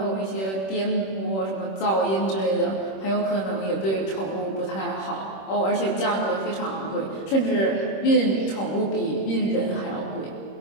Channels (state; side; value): late; right; 26 ms